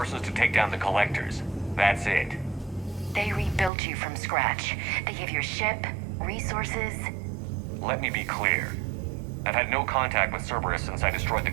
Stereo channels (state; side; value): drops out; left; at 3.7 s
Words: to take down the Collectors. That's it. They rebuilt you from scratch. They gave you a ship, resources. Let me be clear. I've had no contact with Cerberus since I destroyed the